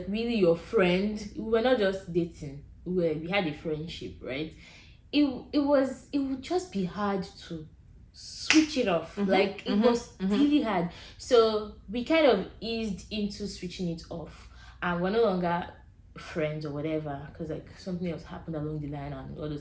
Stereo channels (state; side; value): identical; both; correlation 1.00